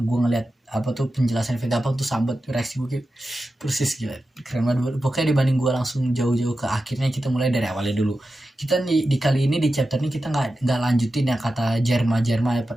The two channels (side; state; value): both; normal; correlation 0.92